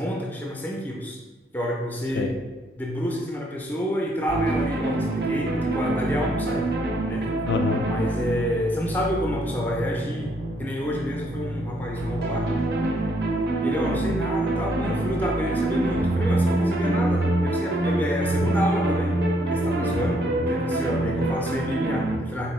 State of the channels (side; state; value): both; normal; correlation 0.70